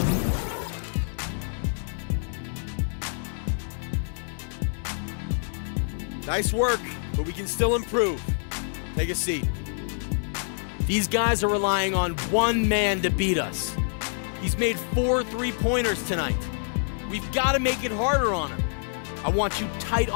Nice work, but we can still improve. Take a seat. These guys are relying on one man to beat us. He's made 4 3-pointers tonight. We've got to make it harder on him. I want you tight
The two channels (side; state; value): right; silent; digital silence